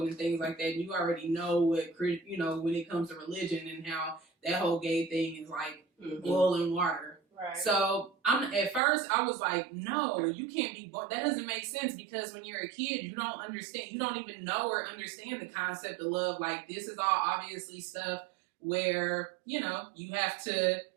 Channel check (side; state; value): left; drops out; at 8.8 s